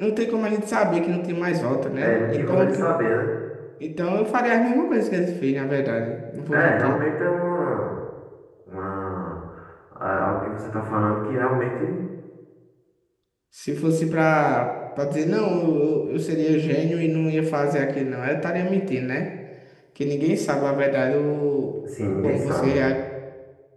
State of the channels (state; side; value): identical; both; correlation 1.00